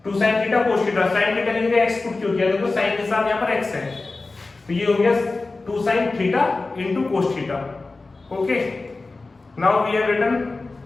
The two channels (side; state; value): right; quieter; 3.5 dB